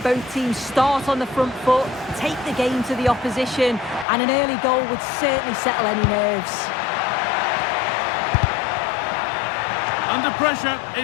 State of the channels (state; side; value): drops out; right; at 4.0 s